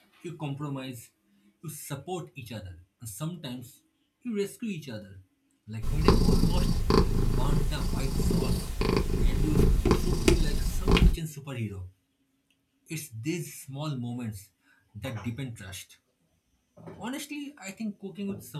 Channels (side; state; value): both; identical; correlation 1.00